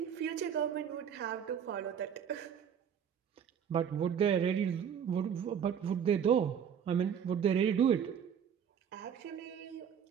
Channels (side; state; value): left; quieter; 8.1 dB